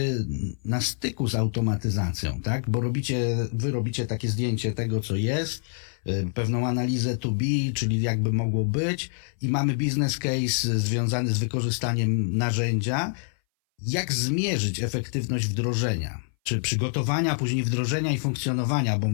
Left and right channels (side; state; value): right; silent; 59 dB below the other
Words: na styku z automatyzacją, tak? Bo wy robicie takie zdjęcie tego, co jest, pewną analizę to be, czyli jakby mogło być i mamy business case związany z wykorzystaniem narzędzia. Jak zmierzyć efektywność wdrożenia? Czy przygotowania, później wdrożenia i funkcjonowania, bo